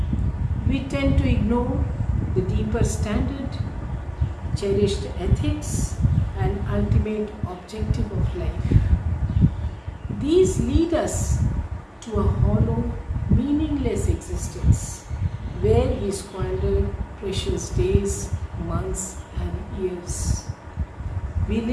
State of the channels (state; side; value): identical; both; correlation 1.00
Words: We tend to ignore the deeper standard, cherished ethics and ultimate objective of life. These lead us to a hollow, meaningless existence where we squander precious days, months and years. We